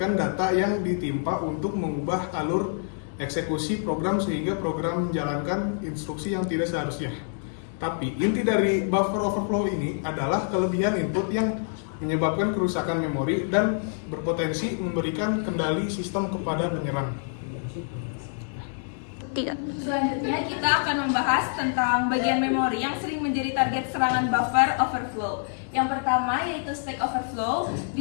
data yang ditimpa untuk mengubah alur eksekusi program sehingga program menjalankan instruksi yang tidak seharusnya. Tapi inti dari buffer overflow ini adalah kelebihan input yang menyebabkan kerusakan memori dan berpotensi memberikan kendali sistem kepada penyerang. Selanjutnya kita akan membahas tentang bagian memori yang sering menjadi target serangan buffer overflow. Yang pertama yaitu stack overflow. Di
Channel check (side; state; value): right; silent; digital silence